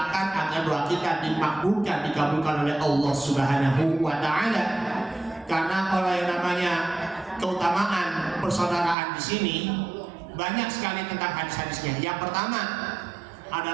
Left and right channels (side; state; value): left; drops out; at 9.0 s